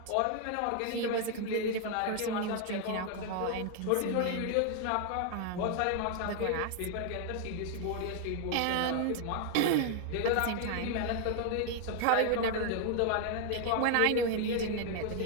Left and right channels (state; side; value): different; both; correlation 0.00